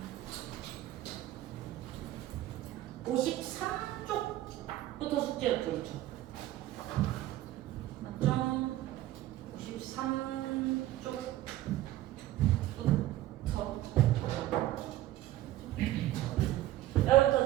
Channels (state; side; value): quieter; left; 14.7 dB